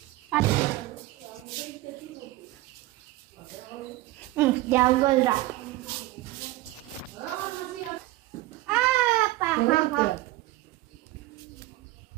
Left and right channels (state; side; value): quieter; left; 18.1 dB